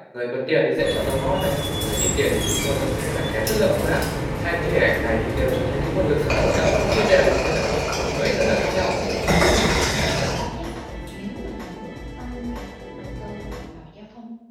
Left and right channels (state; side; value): identical; both; correlation 1.00